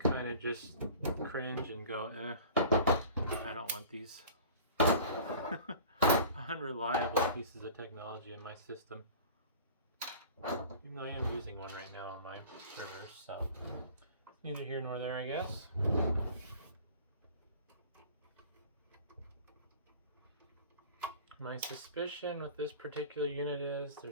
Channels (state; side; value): inverted; both; correlation -0.42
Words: of just cringe and go, I don't want these unreliable pieces of technology in my system. Even though I am using one right now on my servers, so neither here nor there, I guess. My suspicion with this particular unit is